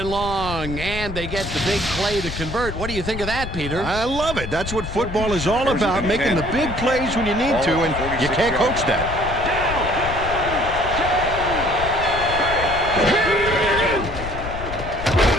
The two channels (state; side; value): noise; left; rumble, 8 dB below the sound